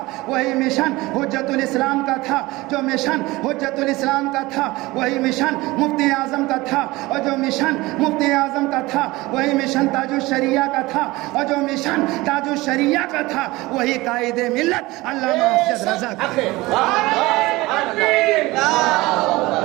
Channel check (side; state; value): left; quieter; 20.5 dB